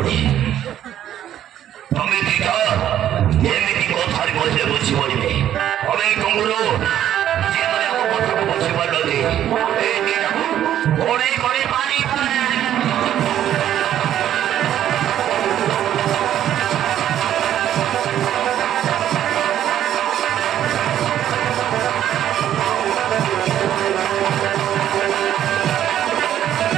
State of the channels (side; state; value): left; quieter; 11.2 dB